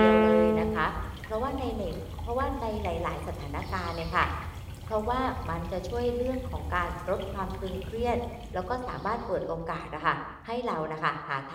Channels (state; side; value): identical; both; correlation 1.00